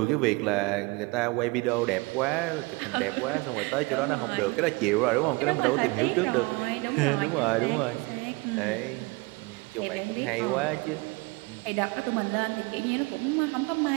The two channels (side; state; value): left; quieter; 25.3 dB